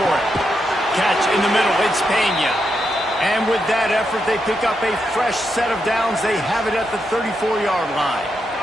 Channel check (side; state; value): both; normal; correlation 0.83